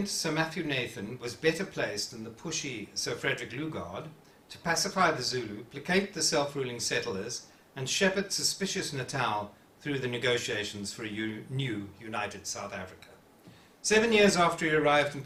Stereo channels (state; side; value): identical; both; correlation 1.00